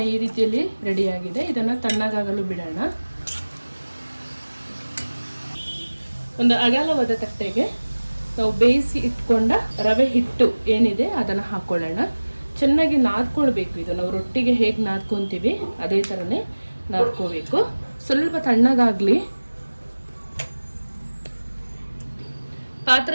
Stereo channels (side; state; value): both; inverted; correlation -1.00